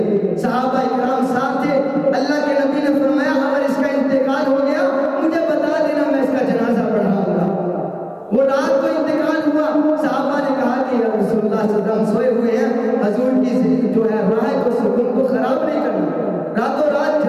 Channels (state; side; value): identical; both; correlation 1.00